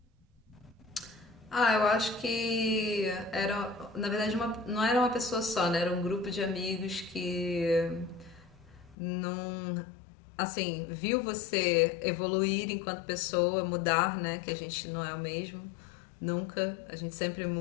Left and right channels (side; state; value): right; drops out; at 9.0 s